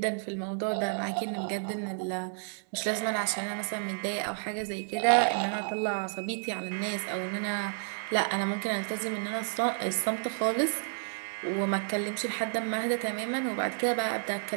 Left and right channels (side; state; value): left; silent; 57 dB below the other